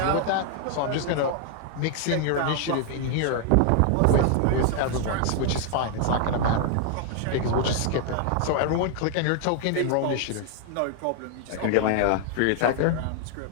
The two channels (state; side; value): different; both; correlation 0.00